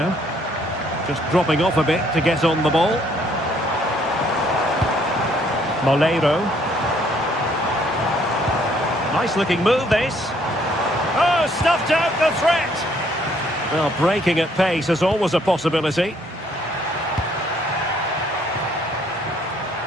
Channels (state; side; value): normal; both; correlation 0.65